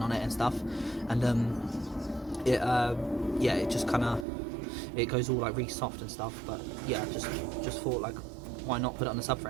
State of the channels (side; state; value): left; drops out; at 4.2 s